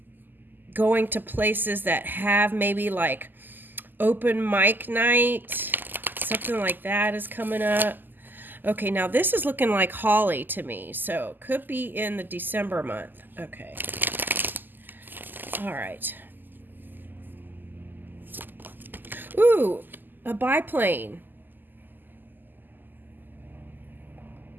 going to places that have maybe like open mic night, something like that is coming up. Okay, now this is looking like Holly to me, so could be in the December month. Okay. All right. Ooh, a biplane.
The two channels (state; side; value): late; left; 0.089 ms